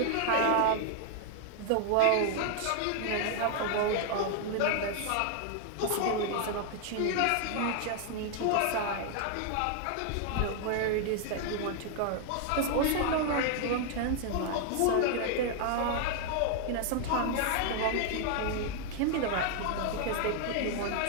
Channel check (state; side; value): different; both; correlation 0.00